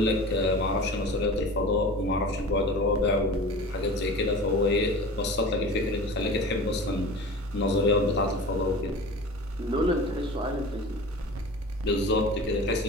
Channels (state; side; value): normal; both; correlation 0.36